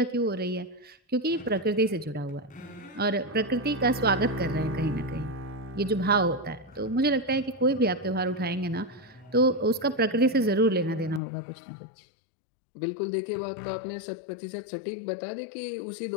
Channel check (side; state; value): right; drops out; at 11.2 s